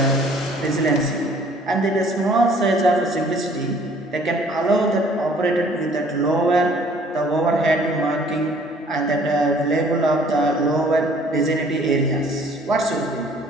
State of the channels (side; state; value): both; normal; correlation 0.56